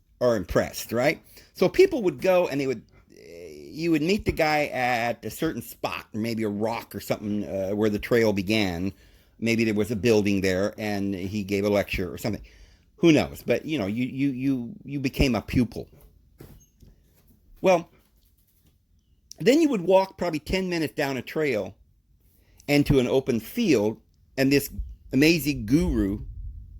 are impressed, right? So people would go and you would meet the guy at a certain spot, maybe a rock or something where the trail began. Maybe there was a building there and he gave a lecture or something. Who knows? But you became a pupil. Well, then you would walk probably 10 minutes down a trail and to an open field, and this amazing guru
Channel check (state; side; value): identical; both; correlation 1.00